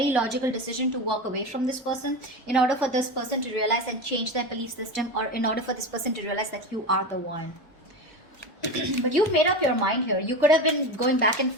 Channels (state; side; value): normal; both; correlation 0.23